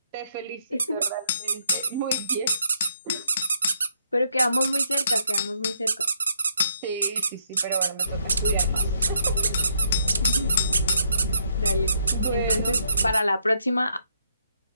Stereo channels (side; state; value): both; inverted; correlation -0.73